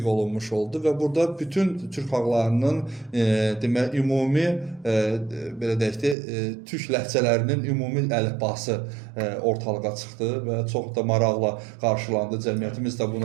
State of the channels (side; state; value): left; drops out; at 6.2 s